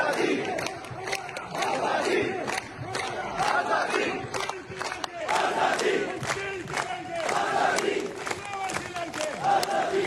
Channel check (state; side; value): identical; both; correlation 1.00